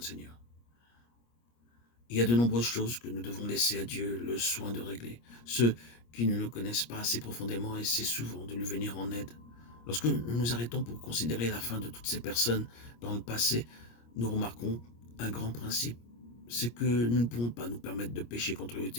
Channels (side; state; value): right; late; 25 ms